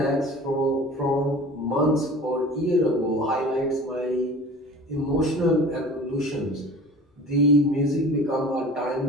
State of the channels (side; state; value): both; normal; correlation 0.41